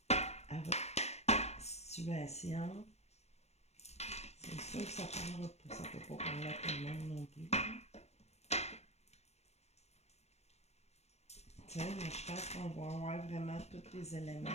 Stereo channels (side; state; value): right; late; 0.31 ms